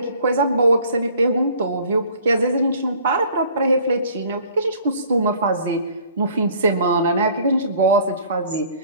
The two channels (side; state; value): both; inverted; correlation -0.53